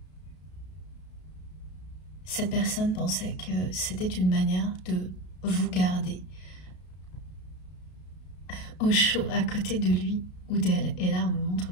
cette personne pensait que c'était une manière de vous garder au chaud à côté de lui ou d'elle. Et là, on me montre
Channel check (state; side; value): late; right; 33 ms